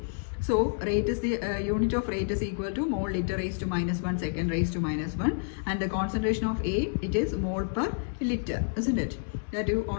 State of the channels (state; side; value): silent; right; digital silence